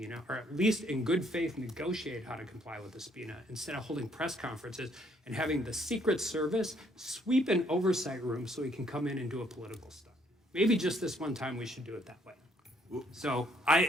or at least in good faith negotiate how to comply with the subpoena, instead of holding press conferences and having the Secret Service sweep an oversight room so he can come in and do a political stunt. Maybe just this one time we should do it that way. So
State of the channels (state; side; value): normal; both; correlation 0.66